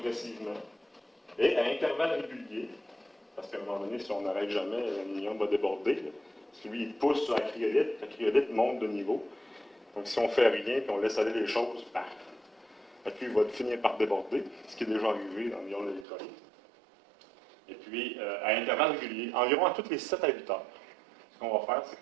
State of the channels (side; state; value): left; drops out; at 16.1 s